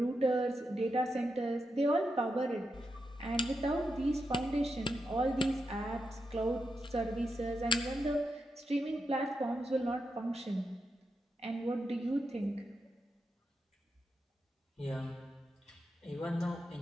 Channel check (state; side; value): normal; both; correlation 0.86